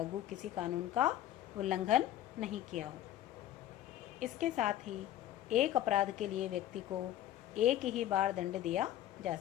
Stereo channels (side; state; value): right; quieter; 12.6 dB